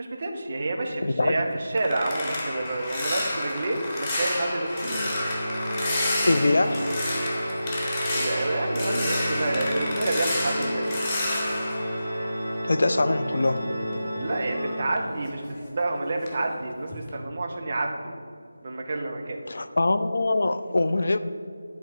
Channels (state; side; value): inverted; both; correlation -0.92